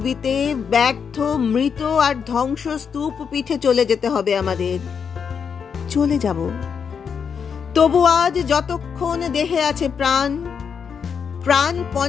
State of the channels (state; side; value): quieter; right; 6.7 dB